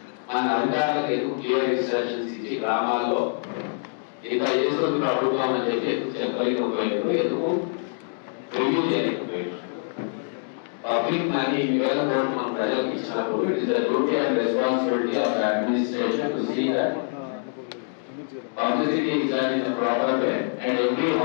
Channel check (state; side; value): silent; right; digital silence